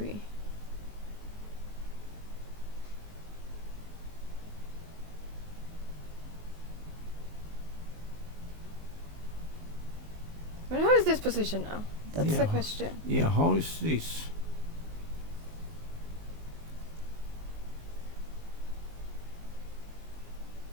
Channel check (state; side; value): late; left; 19 ms